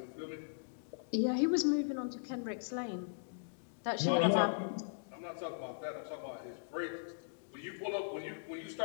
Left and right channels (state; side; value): silent; right; digital silence